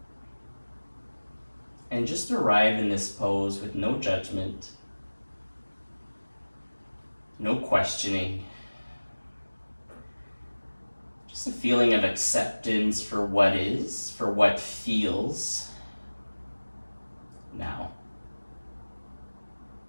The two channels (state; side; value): inverted; both; correlation -1.00